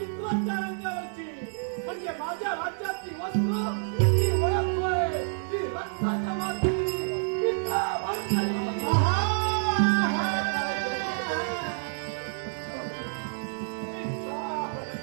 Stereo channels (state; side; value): silent; left; digital silence